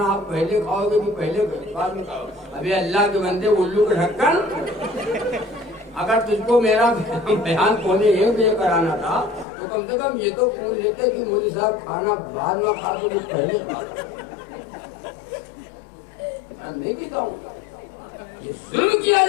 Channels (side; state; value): right; drops out; at 9.5 s